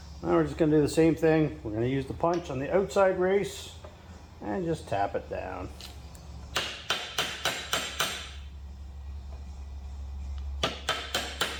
Now we're just going to do the same thing. We're going to use the punch on the outside race and just tap it down.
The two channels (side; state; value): both; identical; correlation 1.00